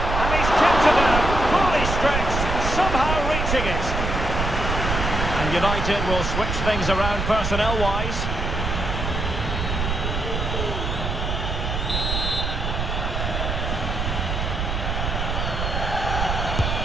And he's kept it out, fully stretched, somehow reaching it. And United will switch things around personnel-wise.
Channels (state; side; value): noise; right; rumble, 2 dB below the sound